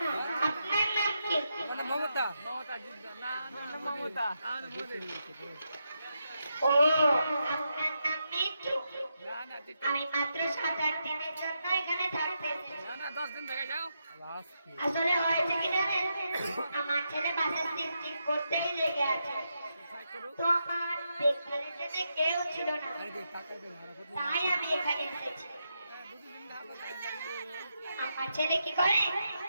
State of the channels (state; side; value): inverted; both; correlation -0.84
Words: আপনার নাম কি? মমতা। মমতা না মমতা। ও, আপনার নাম মিঠু। না না আমি মাত্র 7-8 দিনের জন্য এখানে থাকতেছি। না না 10 দিন থেকে যাও। আসলে হয়েছে কি জানেন, আমার ছেলে বাসে সিফটিং করতেই লেগে আছে। তো আমার দেখভালের জন্য কেউ ছিল না, তাই আমি এখানে এসেছি। আমার ছেলে কি করে,